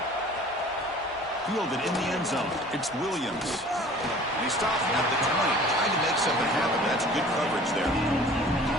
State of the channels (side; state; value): both; normal; correlation 0.47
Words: Fielded in the end zone. It's Williams. And he stopped at the 20, trying to make something happen. That's good coverage there.